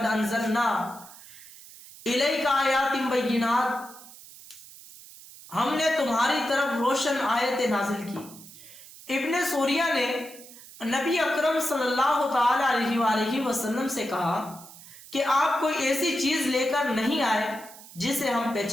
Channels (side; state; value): right; noise; hiss, 18 dB below the sound